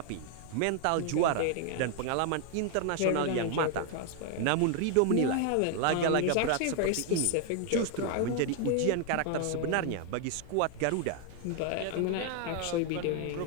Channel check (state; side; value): different; both; correlation 0.00